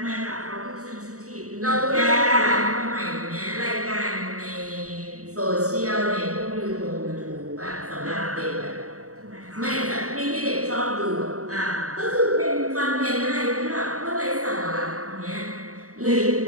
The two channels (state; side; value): late; left; 0.65 ms